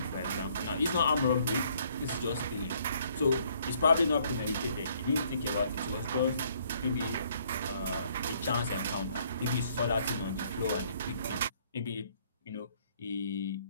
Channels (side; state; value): both; inverted; correlation -0.65